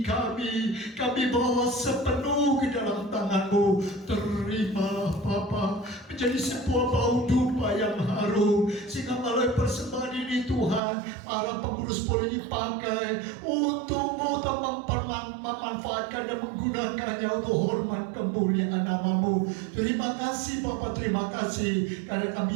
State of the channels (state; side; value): drops out; left; at 10.8 s